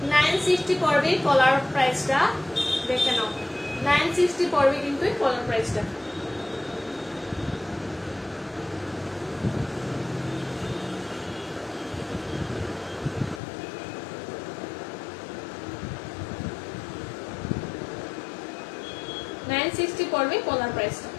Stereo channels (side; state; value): right; drops out; at 13.4 s